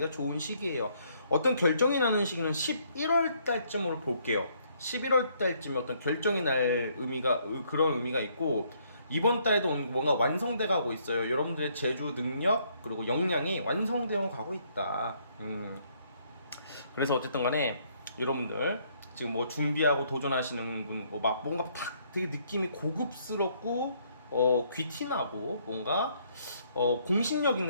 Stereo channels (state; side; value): inverted; both; correlation -0.68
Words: 좋은 시기예요. 어떤 결정이 나는 시기는 11월 달쯤으로 볼게요. 11월 달쯤에 어떤 결정이 날 그런 의미가 있고, 이번 달에도 뭔가 완성돼 가고 있어요. 여러분들의 제주 능력 그리고 역량이 완성되어 가고 있다. 그래서 어쨌든 간에 여러분들 지금 뭐 준비하고 도전하시는 분, 막 뭔가 탁 되게 느낌이 고급스럽고 귀티나고 뭔가 공신력